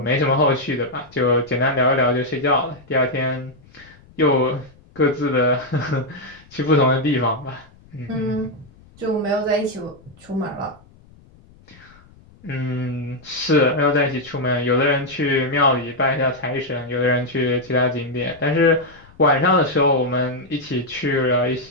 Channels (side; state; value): left; noise; rumble, 26 dB below the sound